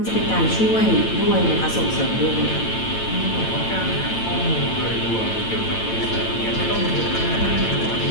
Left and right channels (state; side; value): late; right; 8.9 ms